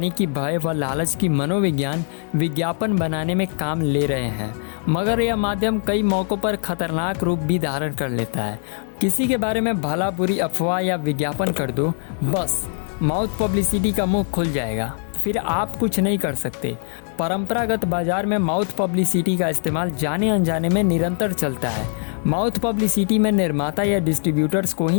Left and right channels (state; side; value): silent; right; 56 dB below the other